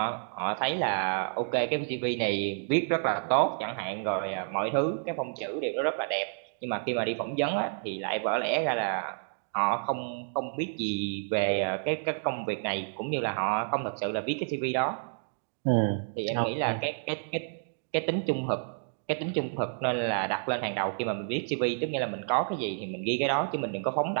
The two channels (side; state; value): left; silent; digital silence